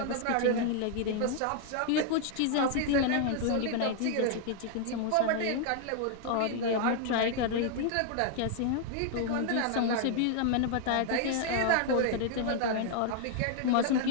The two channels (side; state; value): both; different; correlation 0.00